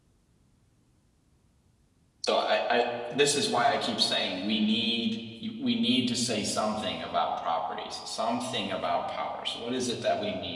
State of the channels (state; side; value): identical; both; correlation 1.00